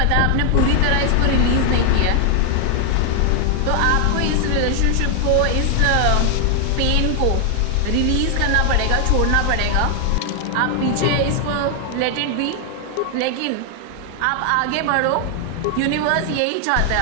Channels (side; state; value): both; different; correlation 0.00